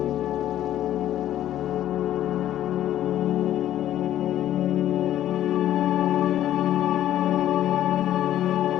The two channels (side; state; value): right; quieter; 12.3 dB